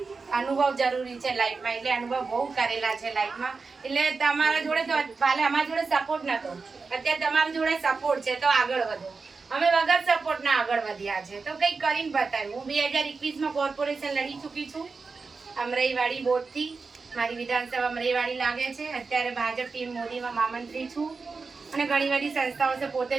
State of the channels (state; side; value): quieter; left; 4.5 dB